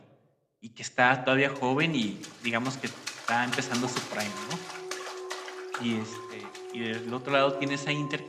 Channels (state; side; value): identical; both; correlation 1.00